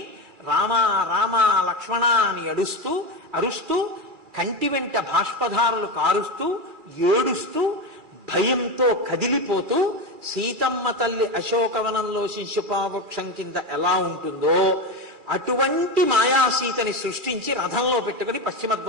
రామ రామ లక్ష్మణ అని అరుస్తూ కంటి వెంట బాష్పధారులు కారుస్తూ ఏడుస్తూ భయంతో కదిలిపోతూ సీతమ్మ తల్లి అశోకవనంలో శిశుపావృక్షం కింద ఎలా ఉంటుందో అటువంటి మాయాసీతని సృష్టించి రథంలో పెట్టుకుని పశ్చిమ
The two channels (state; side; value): late; left; 2.4 ms